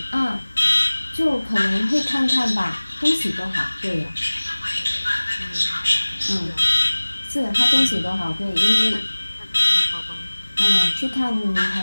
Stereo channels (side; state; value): both; inverted; correlation -1.00